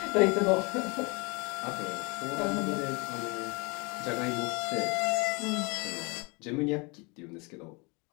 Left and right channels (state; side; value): quieter; right; 29.2 dB